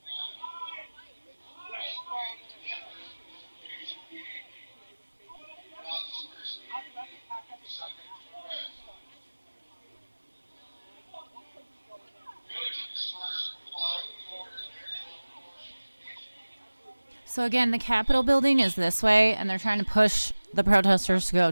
So again, the Capitol building is this way, and they're trying to push the protesters to go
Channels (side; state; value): both; inverted; correlation -1.00